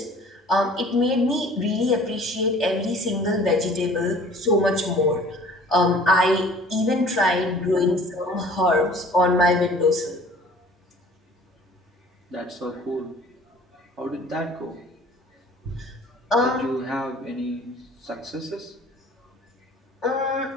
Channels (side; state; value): both; normal; correlation 0.49